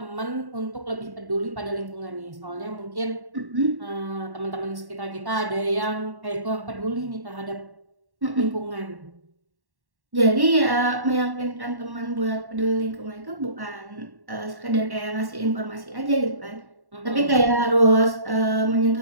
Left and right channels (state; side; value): late; left; 1.1 ms